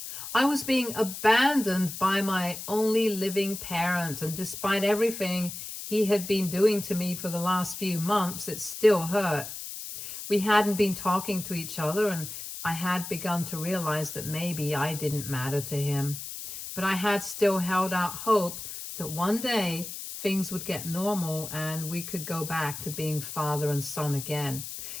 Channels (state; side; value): noise; left; hiss, 9 dB below the sound